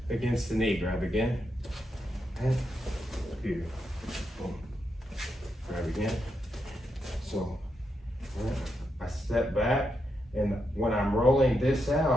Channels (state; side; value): normal; both; correlation 0.83